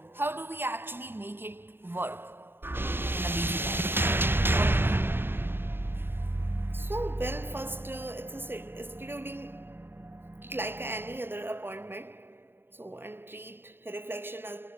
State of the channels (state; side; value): late; left; 0.11 ms